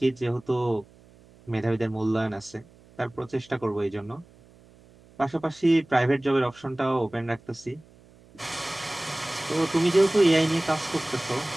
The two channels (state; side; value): noise; right; hum, 27 dB below the sound